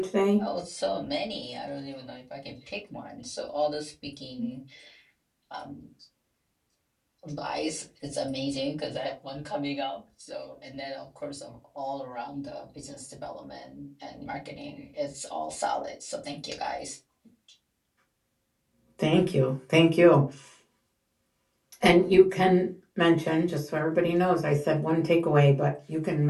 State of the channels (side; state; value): both; identical; correlation 1.00